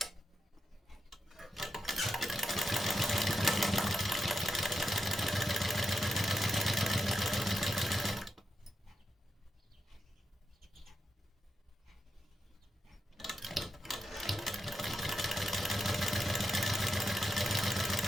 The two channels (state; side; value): normal; both; correlation 0.86